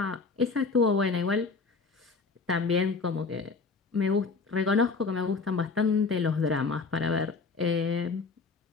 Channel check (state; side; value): quieter; right; 4.5 dB